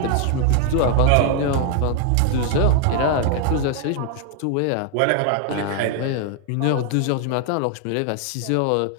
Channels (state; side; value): different; both; correlation 0.00